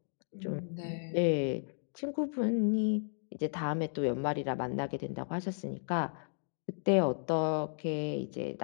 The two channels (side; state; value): right; silent; digital silence